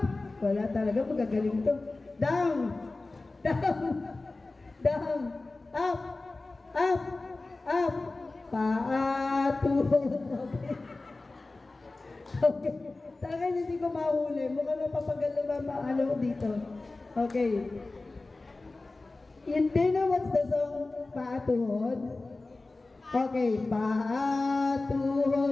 Wala talaga, magagaling to. Down. Down. Down. Up. Up. Up. Paa, tuhod. Okay. Talaga hindi ko mahuli. Mukhang napapagalo ba maalaw dito. Okay. Do you know what's the song? Paa, tuhod? Okay. Paa,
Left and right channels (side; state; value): right; quieter; 3.3 dB